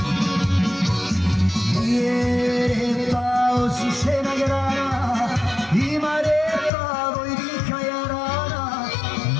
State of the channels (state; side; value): drops out; right; at 6.7 s